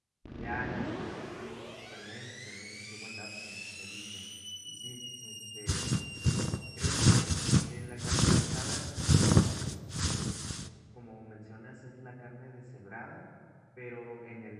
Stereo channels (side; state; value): both; identical; correlation 1.00